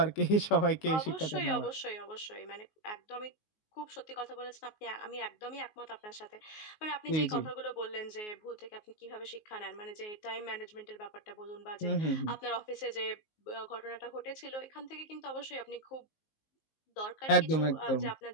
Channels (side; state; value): right; late; 19 ms